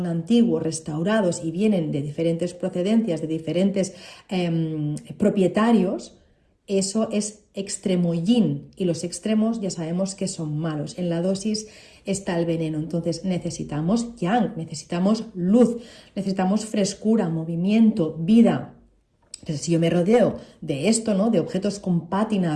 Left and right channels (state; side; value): identical; both; correlation 1.00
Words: antiguos, restaurados y vienen de diferentes procedencias, de diferentes propietarios, eso es extremo yin, y los extremos ya sabemos que son malos. En la dosis está el veneno. Entonces necesitamos yang, necesitamos luz, necesitamos frescura, movimiento, vida. Entonces, si yo me rodeo de esto, ¿no?, de objetos con